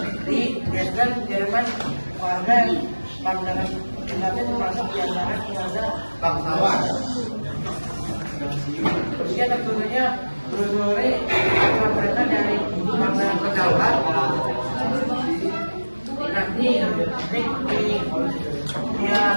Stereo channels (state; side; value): inverted; both; correlation -1.00